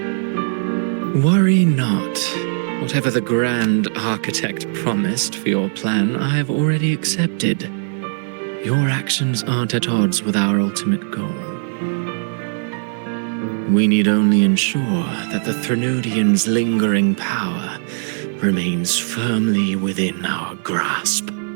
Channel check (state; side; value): silent; left; 59 dB below the other